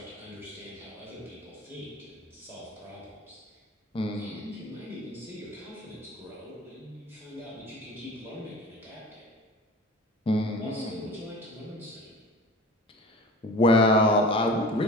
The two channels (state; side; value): normal; both; correlation 0.38